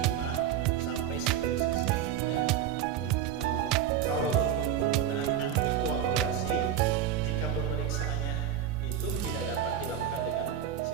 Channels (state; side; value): quieter; left; 9.7 dB